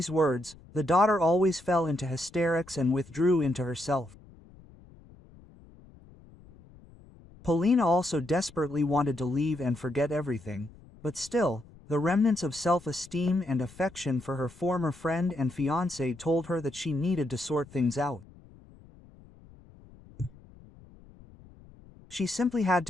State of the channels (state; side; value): noise; left; rumble, 23 dB below the sound